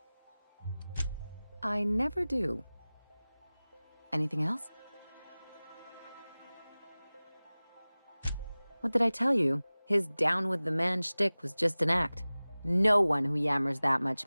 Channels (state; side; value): inverted; both; correlation -0.99